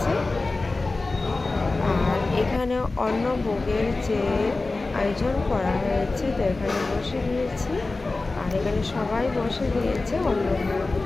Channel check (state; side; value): quieter; right; 3.4 dB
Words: আর এখানে অন্নভোগের যে আয়োজন করা হয়েছে, তো এখানে বসে গিয়েছি, আর এখানে সবাই বসে গিয়েছে অন্নভোগ